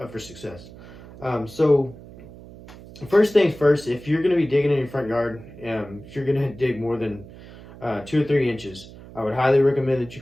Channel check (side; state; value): right; noise; hum, 18 dB below the sound